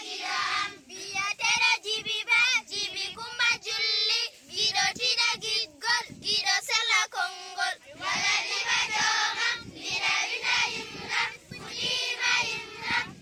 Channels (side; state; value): both; identical; correlation 1.00